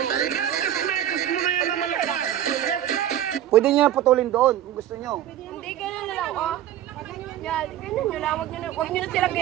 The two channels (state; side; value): quieter; left; 11.6 dB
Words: Pwede niya putulin doon kung gusto niyo. Hindi, ganun na lang, oh. Yan, ganun nyo lang. Huwag nyo na sila